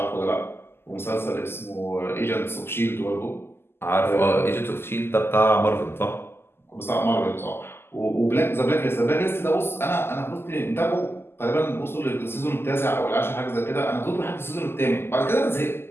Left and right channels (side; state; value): right; late; 0.12 ms